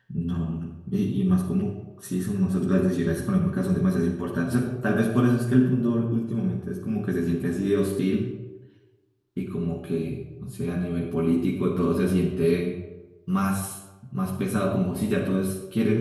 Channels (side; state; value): both; identical; correlation 1.00